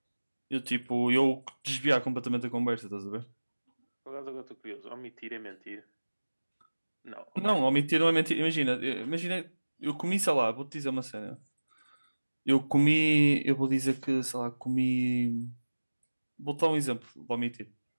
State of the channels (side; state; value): both; inverted; correlation -1.00